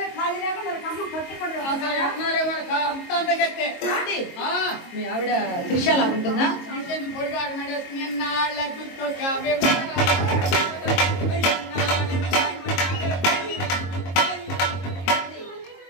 ఖాళీ లేక మరి ఖమ్మం ఖర్చు కూడా అసలు ఎన్నారే అంత గట్టే. మీ ఆవిడ త్రిశాల ఉంటుందా? పొడిగాడు మేడం నిన్నాళ్ళతో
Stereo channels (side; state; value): right; late; 22 ms